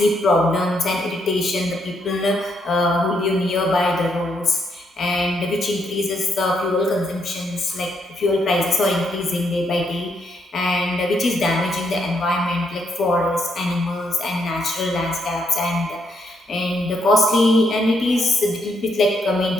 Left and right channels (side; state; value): both; normal; correlation 0.76